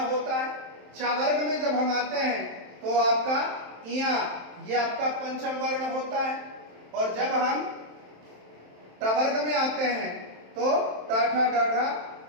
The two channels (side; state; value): left; late; 27 ms